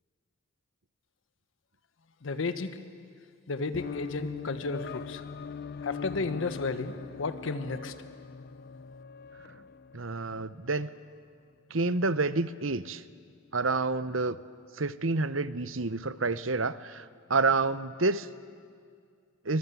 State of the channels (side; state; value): both; normal; correlation 0.01